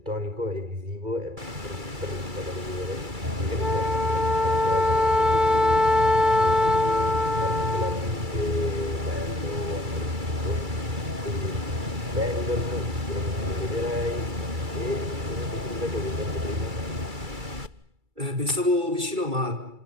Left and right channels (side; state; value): left; late; 2.3 ms